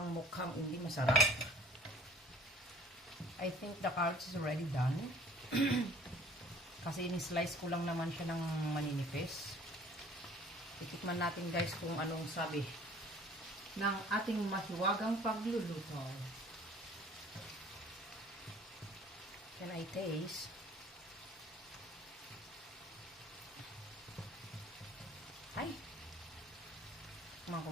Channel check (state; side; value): normal; both; correlation 0.52